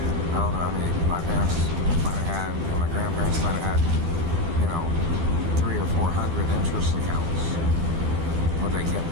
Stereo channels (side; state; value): left; late; 12 ms